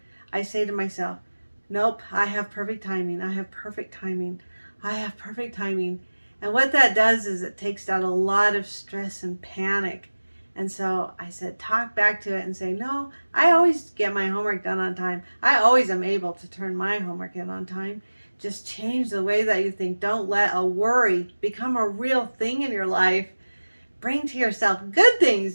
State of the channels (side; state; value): both; inverted; correlation -1.00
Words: I say to myself, nope, I have perfect timing. I have perfect timing. I have perfect timing. And what that does is it takes out a lot of stress and panic. And so I said, talk back to it and say, no, I always get my homework done on time. I always am able to turn my homework in on time. Just change the way that you think. Don't let a worry become a real thing in your life. Bring to yourself good